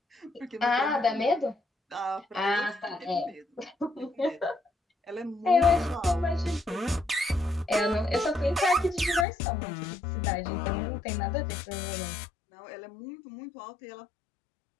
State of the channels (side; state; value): right; drops out; at 9.2 s